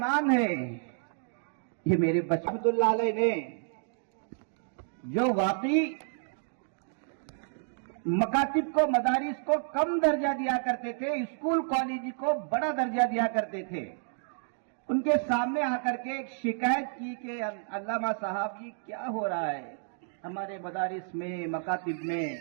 ہے، یہ میرے بچپن اللہ علیہ نے جو واقعی مکاتب کو، مدارس کو کم درجہ دیا کرتے تھے، اسکول کالج کو بڑا درجہ دیا کرتے تھے، ان کے سامنے آ کر کے ایک شکایت کی کہ علامہ صاحب جی کیا ہو رہا ہے ہمارے مدارس میں، مکاتب میں،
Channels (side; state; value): left; silent; digital silence